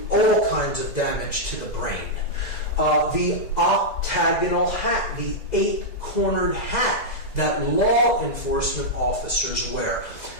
all kinds of damage to the brain. The octagonal hat, the 8-cornered hat that law enforcement officers wear.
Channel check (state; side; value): late; right; 2.0 ms